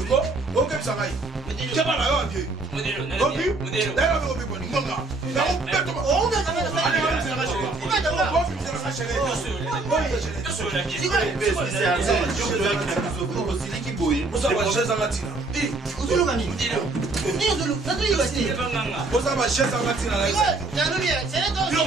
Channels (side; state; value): left; quieter; 3.3 dB